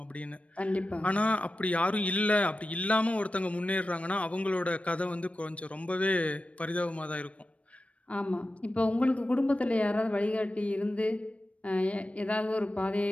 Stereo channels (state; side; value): late; right; 0.064 ms